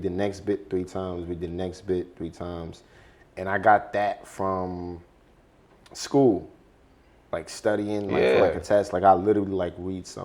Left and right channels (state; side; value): identical; both; correlation 1.00